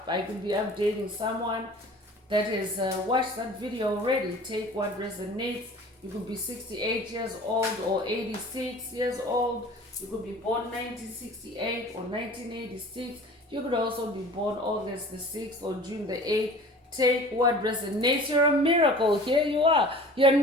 I could be updating someone that has watched that video already. Take what resonates. You could be 68 years old or 86 years old. You could be born 1968 or 1986. You could also be born August the 6th or June the 8th. Take what resonates. You're a miracle. Here you are. You're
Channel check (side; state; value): both; normal; correlation 0.43